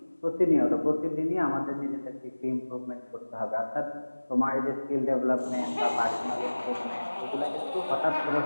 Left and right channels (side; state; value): both; inverted; correlation -1.00